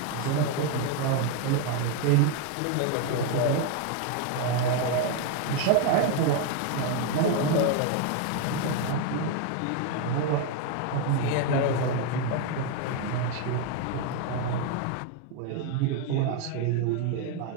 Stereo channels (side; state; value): both; different; correlation 0.01